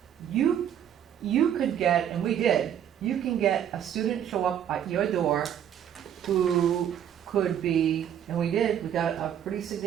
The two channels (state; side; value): quieter; left; 9.6 dB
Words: you could get, and we did, you can get a student show up at your door who could be, and we did, we got a pretty